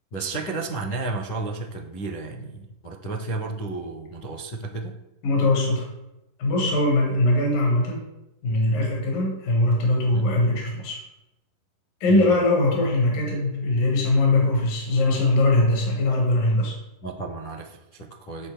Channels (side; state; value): right; late; 10 ms